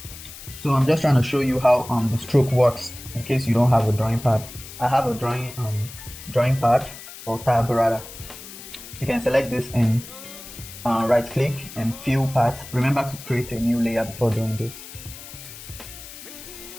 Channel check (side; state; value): left; noise; hiss, 14 dB below the sound